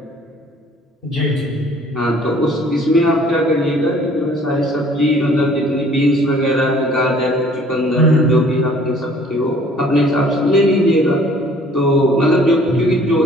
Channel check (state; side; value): normal; both; correlation 0.55